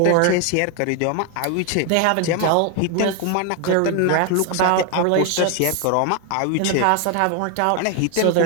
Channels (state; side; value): different; both; correlation 0.01